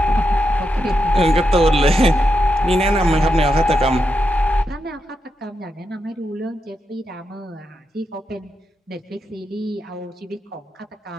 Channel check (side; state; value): both; normal; correlation 0.85